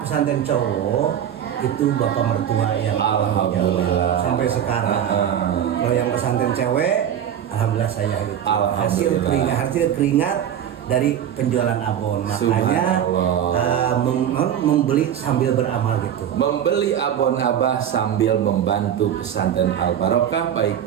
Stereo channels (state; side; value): quieter; left; 9.7 dB